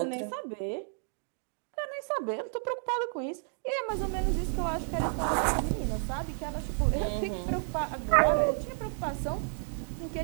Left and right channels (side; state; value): left; silent; 57 dB below the other